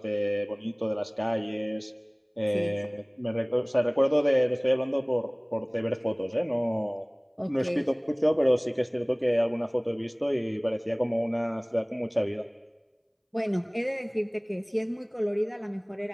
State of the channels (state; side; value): identical; both; correlation 1.00